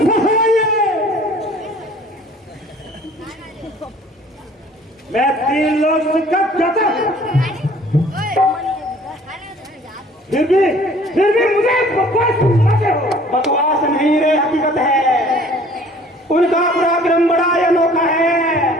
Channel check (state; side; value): normal; both; correlation 0.53